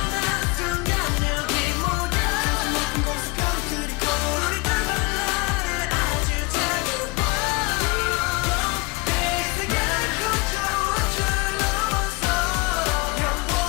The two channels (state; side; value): quieter; right; 26.4 dB